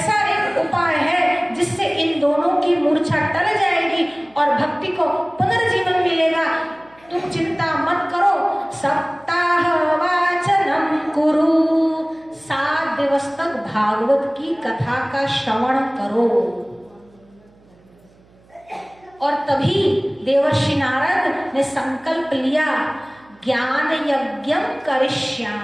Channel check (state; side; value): noise; right; hum, 30 dB below the sound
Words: एक उपाय है जिससे इन दोनों की मूर्छा टल जाएगी और भक्ति को पुनर्जीवन मिलेगा। तुम चिंता मत करो, सप्ताह वाचनम कुरु, 7 दिवस तक भागवत की कथा का श्रवण करो। और तभी देवर्षि नारद ने संकल्प लिया, ज्ञान यज्ञ